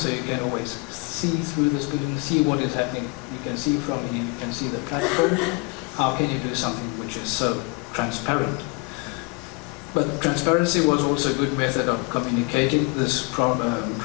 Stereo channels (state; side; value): quieter; right; 29.2 dB